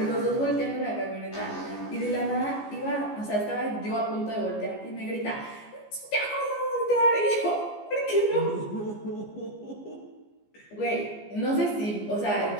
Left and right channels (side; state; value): right; late; 14 ms